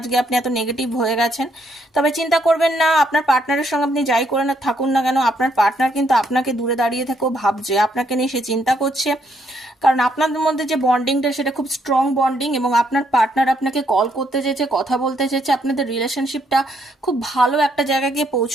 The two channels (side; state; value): both; normal; correlation 0.73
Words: আপনি এত নেগেটিভ হয়ে গেছেন। তবে চিন্তা করবেন না, আপনার পার্টনারের সঙ্গে আপনি যাই করে না থাকুন না কেন, আপনার পার্টনার কিন্তু আপনাকে দূরে দাঁড়িয়ে থেকেও ভাবছে, আপনাকে নিয়ে সে চিন্তা করছে। কারণ আপনাদের মধ্যে যে বন্ডিংটা সেটা খুব স্ট্রং বন্ডিং, এবং আপনার পার্টনার আপনাকে কল করতে চেয়েছে, কথা বলতে চেয়েছে। আপনাদের রিলেশনশিপটা খুব ভালো একটা জায়গায় গিয়ে